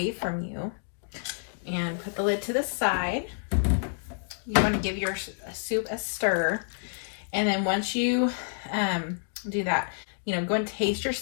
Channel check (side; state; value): right; silent; digital silence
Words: from you and put the lid to the side. You want to give your soup a stir, and then once you do that, you know, go and taste your